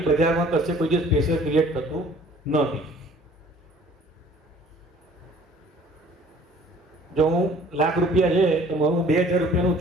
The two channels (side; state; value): both; normal; correlation 0.52